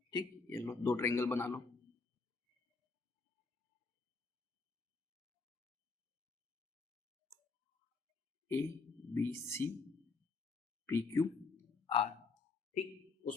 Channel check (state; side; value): quieter; right; 4.2 dB